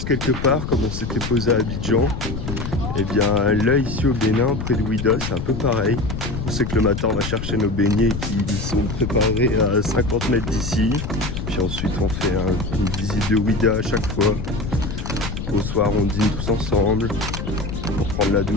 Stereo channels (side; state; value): left; noise; rumble, 5 dB below the sound